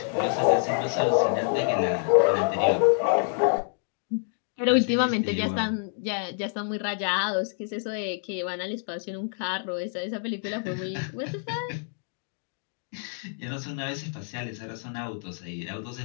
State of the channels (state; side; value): silent; right; 60 dB below the other